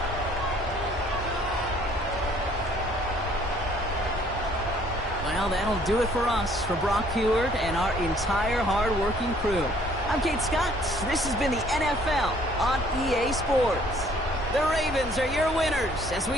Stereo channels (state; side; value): normal; both; correlation 0.60